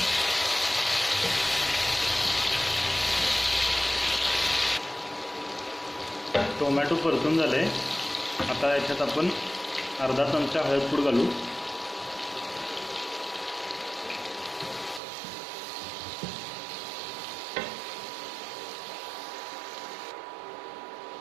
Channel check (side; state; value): left; drops out; at 15.0 s